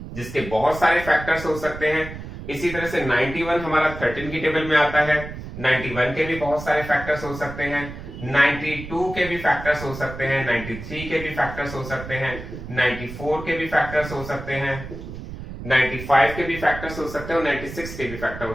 जिसके बहुत सारे फैक्टर्स हो सकते हैं। इसी तरह से 91 हमारा 13 की टेबल में आता है। 91 के भी बहुत सारे फैक्टर्स हो सकते हैं, 92 के भी फैक्टर्स हो सकते हैं, 93 के भी फैक्टर्स हो सकते हैं, 94 के भी फैक्टर्स हो सकते हैं, 95 के भी फैक्टर्स हो सकते हैं और 96 के भी फैक्टर हो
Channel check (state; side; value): noise; right; rumble, 11 dB below the sound